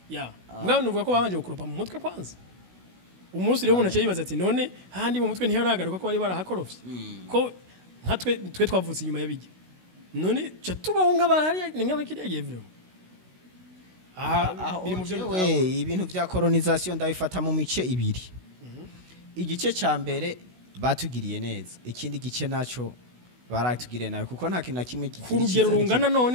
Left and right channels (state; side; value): late; left; 16 ms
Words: ya mbwa nuvuga ko babanje gukurupa mu mutwe kwanza umunsi rero umuntu aciye yibaza ati none handi mu mutwe ntiharagaruka ko bari barahakorofye ko twe twavutse inyuma y'abijya none cyo tubaho nk'abahari nk'abakiriya vyo biri mu byo ibintu bya colonization ndabifata mu mice ibiri igice ca mbere batugiriye neza ikindi gice naco baratugiriye nawe kuko nta kintu na kimwe ku rugero rungana